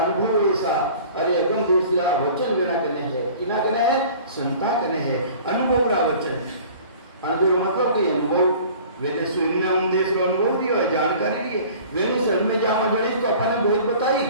अनुभव ऐसा, अरे अगम देशरा वचन बिना कने है, किना कने है संता कने है, अनुभव रा वचन। अनुभव मतलब कि अनुभव वेने स्वयं देश रो अनुभव दियो है, जानकारी दी है, वेने शरण में जामा जड़े तो अपन ने बहुत बताई।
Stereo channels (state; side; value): inverted; both; correlation -0.46